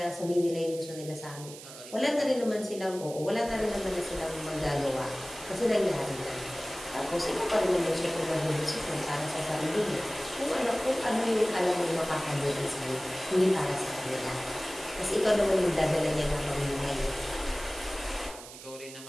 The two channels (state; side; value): noise; right; hiss, 15 dB below the sound